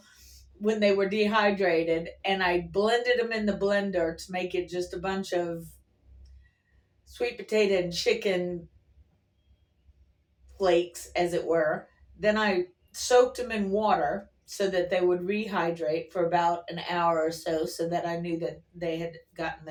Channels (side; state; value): both; identical; correlation 1.00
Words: when they were dehydrated and I blended them in the blender to make it just a bunch of sweet potato and chicken flakes, as it were. Then I soaked them in water so that they would rehydrate for about an hour or so that I knew that they had gotten